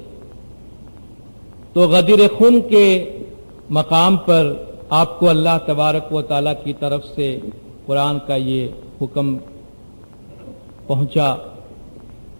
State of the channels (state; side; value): inverted; both; correlation -1.00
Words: تو غدیر خم کے مقام پر آپ کو اللہ تبارک و تعالیٰ کی طرف سے قرآن کا یہ حکم پہنچا